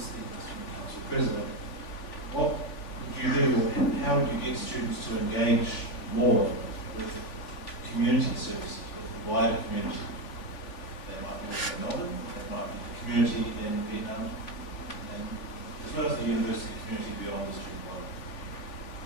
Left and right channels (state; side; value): late; right; 3.4 ms